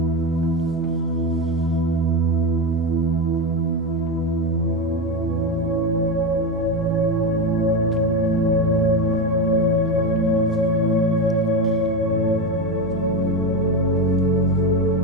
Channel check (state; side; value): normal; both; correlation 0.15